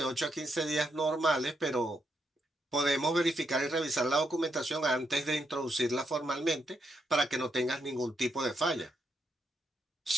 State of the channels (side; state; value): both; normal; correlation 0.80